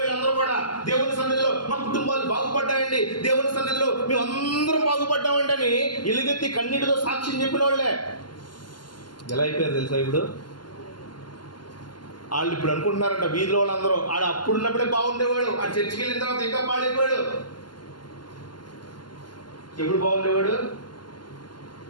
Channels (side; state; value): right; late; 0.71 ms